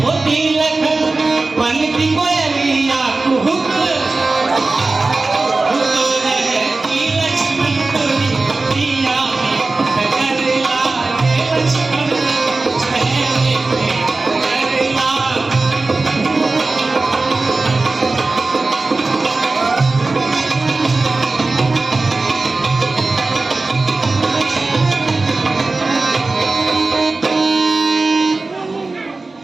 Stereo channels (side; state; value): left; quieter; 3.5 dB